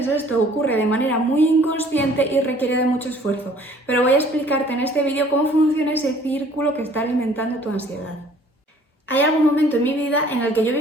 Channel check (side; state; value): both; normal; correlation 0.55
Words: esto ocurre de manera muy inconsciente y requiere de mucho esfuerzo, pero voy a explicarte en este vídeo cómo funciona ese círculo que está alimentando tu ansiedad. Hay algún momento en mi vida en el que yo